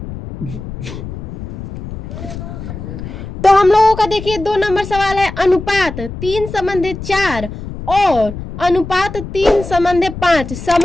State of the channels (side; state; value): left; noise; rumble, 10 dB below the sound